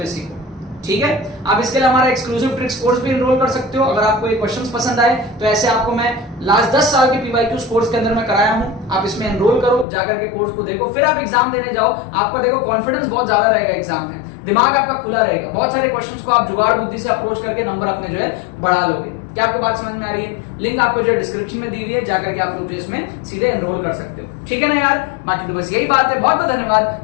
सीखो, ठीक है। आप इसके लिए हमारा एक्सक्लूसिव ट्रिक्स कोर्स भी एनरोल कर सकते हो। अगर आपको ये क्वेश्चंस पसंद आए तो ऐसे आपको मैं लास्ट 10 साल के PYQ कोर्स के अंदर में कराया हूं, आप इसमें एनरोल करो, जाकर के कोर्स को देखो, फिर आप एग्जाम देने जाओ। आपका देखो कॉन्फिडेंस बहुत ज्यादा रहेगा एग्जाम में, दिमाग आपका खुला रहेगा, बहुत सारे क्वेश्चंस को आप जुगाड़ बुद्धि से अप्रोच करके नंबर अपने जो है बढ़ा लोगे। क्या आपको बात समझ में आ रही है? लिंक आपको जो है डिस्क्रिप्शन में दी हुई है, जाकर के आप लोग जो इसमें सीधे एनरोल कर सकते हो, ठीक है ना यार। बाकी तो बस यही बात है, बहुत बहुत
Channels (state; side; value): drops out; right; at 9.9 s